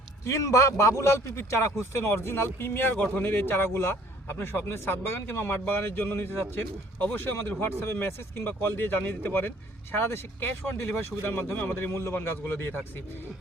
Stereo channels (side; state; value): both; normal; correlation 0.57